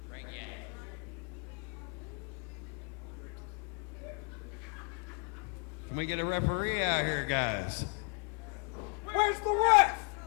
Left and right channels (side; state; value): right; quieter; 39.1 dB